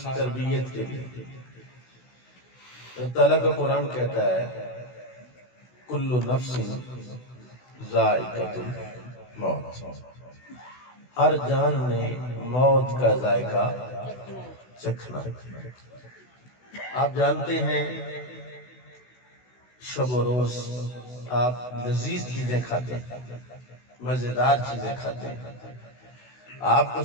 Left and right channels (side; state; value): right; late; 16 ms